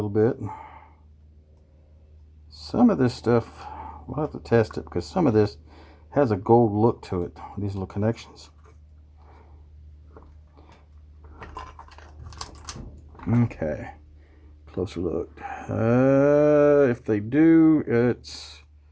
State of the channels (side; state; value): both; identical; correlation 1.00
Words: bit. Some of this stuff, we'll have to test it, because some of this has a gold look to it, these little connections. Okay, closer look. If they do, it's